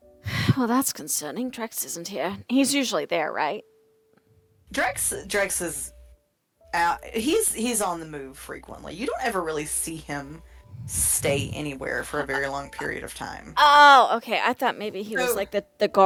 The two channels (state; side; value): identical; both; correlation 1.00